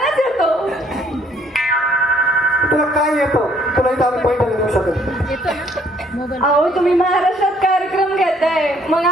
येतो. तुला काय येतं? तुला इथं आम्ही पैठणी देऊ शकतो. अहो तुम्ही महाराष्ट्रात कार्यक्रम घेताय, मग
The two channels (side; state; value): both; normal; correlation 0.63